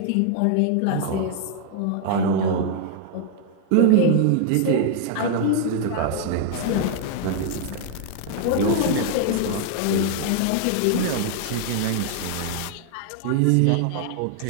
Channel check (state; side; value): different; both; correlation 0.00